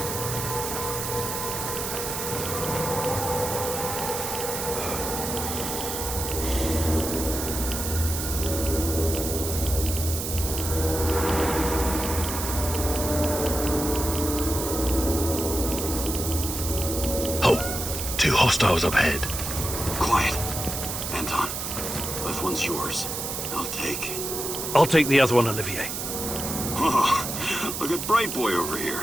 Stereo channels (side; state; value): right; noise; hiss, 4 dB below the sound